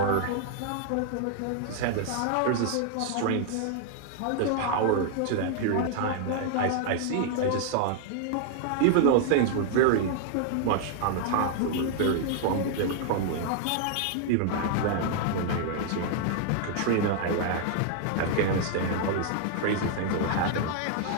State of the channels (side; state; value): both; different; correlation 0.00